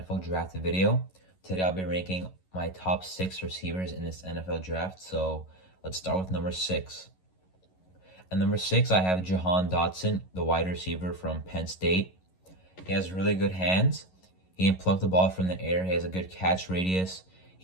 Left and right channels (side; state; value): right; late; 11 ms